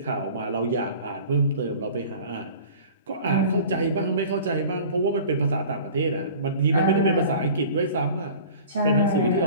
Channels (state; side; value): inverted; both; correlation -0.43